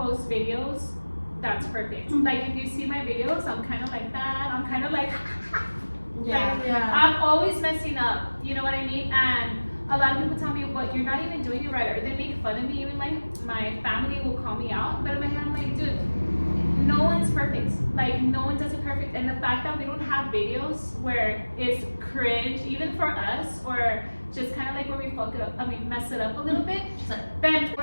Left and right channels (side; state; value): both; inverted; correlation -1.00